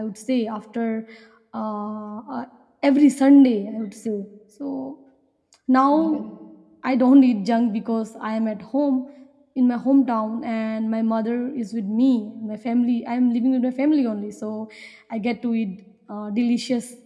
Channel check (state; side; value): identical; both; correlation 1.00